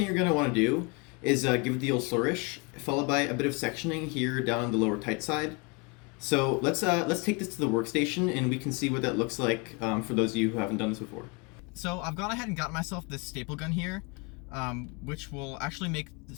you're gonna want to do is give it the old flourish, followed by a bit of sectioning here down on the lower tight side. So let's take this to the workstation, and we can see what that looks like for those of you who haven't done this before. So I've gone ahead and got myself this staple gun here, which will actually make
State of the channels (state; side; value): quieter; right; 30.4 dB